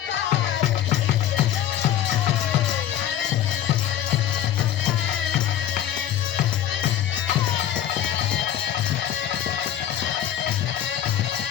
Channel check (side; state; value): right; quieter; 11.0 dB